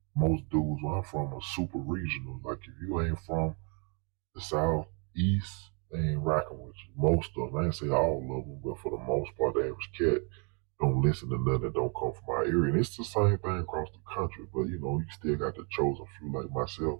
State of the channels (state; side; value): quieter; left; 36.4 dB